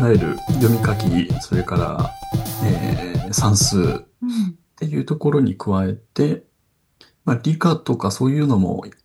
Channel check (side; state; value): both; identical; correlation 1.00